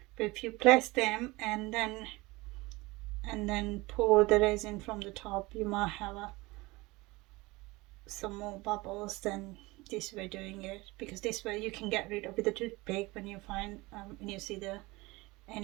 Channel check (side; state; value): left; quieter; 22.3 dB